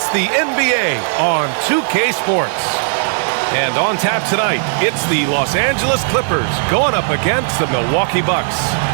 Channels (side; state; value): left; silent; digital silence